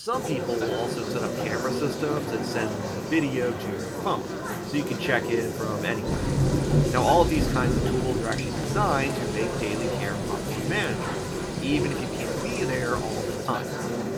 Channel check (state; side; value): identical; both; correlation 1.00